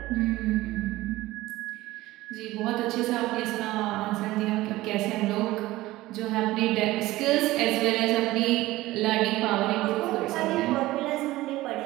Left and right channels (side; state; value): left; quieter; 17.7 dB